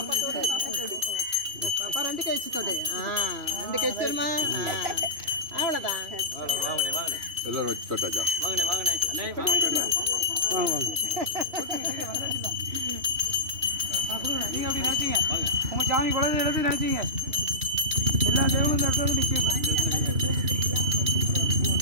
பாப்பா 2 கை வச்சு தொடு. 2 கை வச்சிருமா? அவ்வளவுதான். வாங்கனே எல்லாரும் வச்சு தொட்டாச்சா? வாங்கனே அண்ணே வாங்க நீங்க அப்படி நினைச்சீங்க உங்க சாமி குழந்தை எடுத்து நினைச்சீங்க எல்லா தேவனும் இந்த இடத்துல நிற்கும்.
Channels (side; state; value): left; late; 2.9 ms